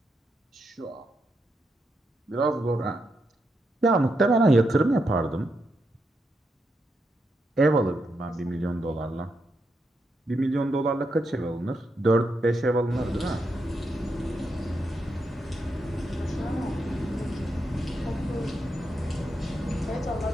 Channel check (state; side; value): normal; both; correlation 0.83